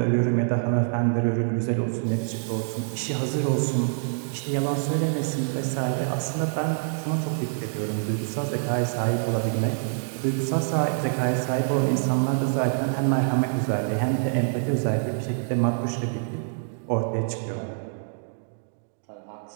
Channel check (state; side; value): silent; left; digital silence